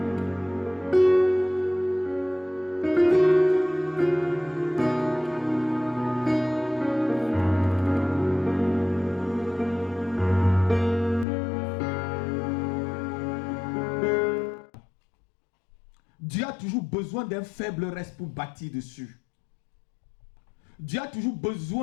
a toujours besoin d'un faible reste pour bâtir dessus. Dieu a toujours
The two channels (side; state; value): right; drops out; at 11.2 s